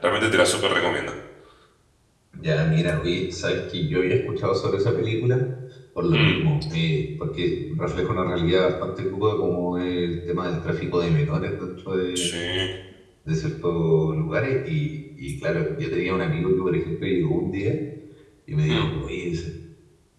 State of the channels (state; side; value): identical; both; correlation 1.00